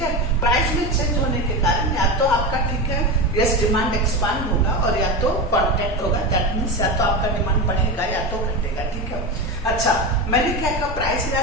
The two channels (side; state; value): both; normal; correlation 0.20